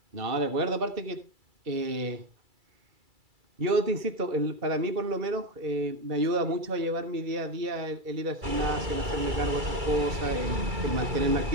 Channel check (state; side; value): late; left; 2.3 ms